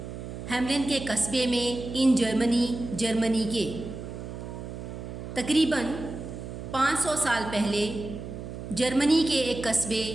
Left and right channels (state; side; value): noise; right; hum, 9 dB below the sound